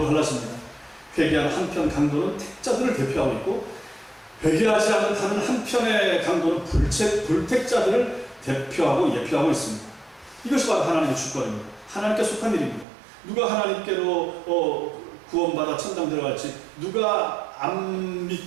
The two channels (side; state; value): left; drops out; at 12.9 s